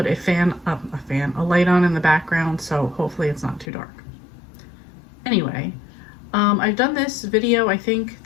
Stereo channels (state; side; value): drops out; right; at 3.7 s